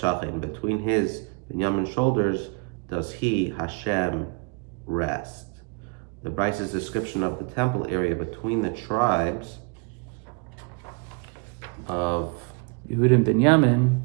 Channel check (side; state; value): left; quieter; 32.6 dB